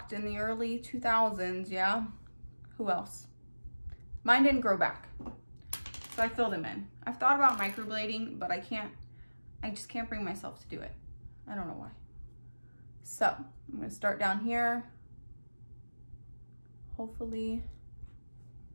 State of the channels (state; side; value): inverted; both; correlation -1.00